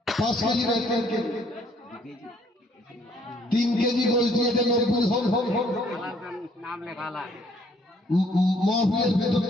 5 কেজি না 3 কেজি, 3 কেজি গোস্ত দিয়ে 90 হোক। মহফিলের ভেতর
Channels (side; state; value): both; normal; correlation 0.64